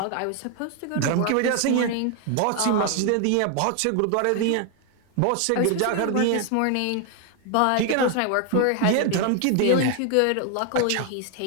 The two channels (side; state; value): both; different; correlation 0.01